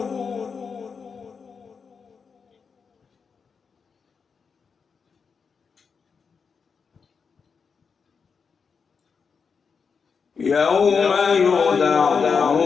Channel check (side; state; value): right; quieter; 5.7 dB